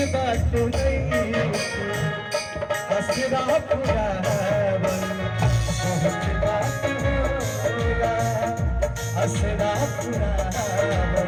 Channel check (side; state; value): both; identical; correlation 1.00